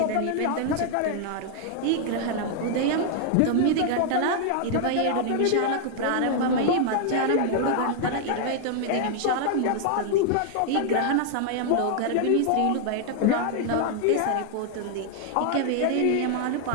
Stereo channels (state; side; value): different; both; correlation 0.00